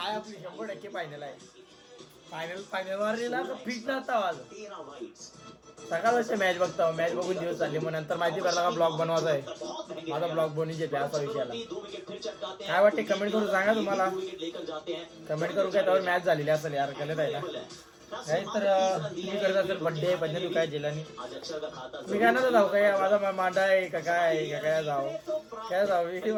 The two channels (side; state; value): both; identical; correlation 1.00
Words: आपली 100% फायनल आहे. फायनल वारलेला तर फिट नसता आज. सकाळ मॅच बघता. मॅच बघून दिवस चालले. मग नंतर माहिती पडला का ब्लॉग बनवायचा आहे. माझा ब्लॉग बनवून येते असा विषयाला. काय वाटते कमेंट करून सांगा. तुम्हाला कमेंट करू काय त्यावर मॅच झालेली असेल यार. गलत आहे ना. काय तर तुम्ही करत असेल बड्डे तू काय जेलानी. मी काय ना जाऊ काय माझा मांडा आहे का काय जाऊ